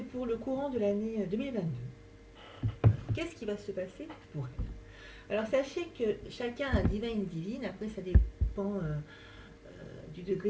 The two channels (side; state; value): both; identical; correlation 1.00